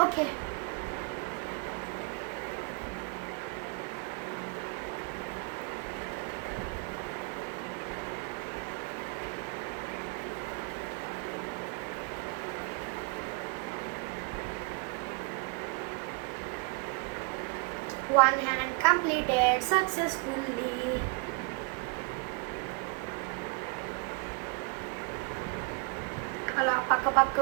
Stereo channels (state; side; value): quieter; left; 32.5 dB